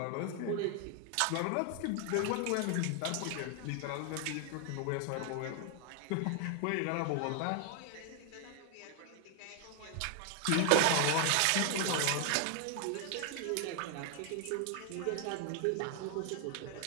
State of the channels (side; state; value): both; different; correlation 0.00